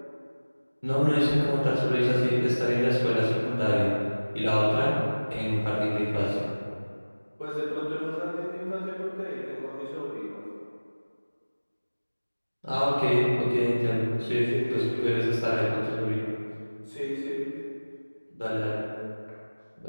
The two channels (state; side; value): inverted; both; correlation -1.00